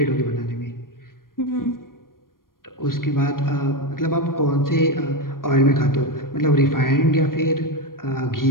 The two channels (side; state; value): right; late; 0.91 ms